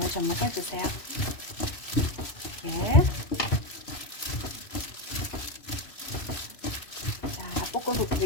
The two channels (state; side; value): late; right; 3.0 ms